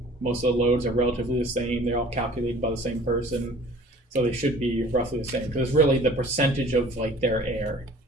Most of the loads are relatively the same. They're all calculated by the same person, so they should be roughly the same, because it's really the percentage of like their air.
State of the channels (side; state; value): both; normal; correlation 0.48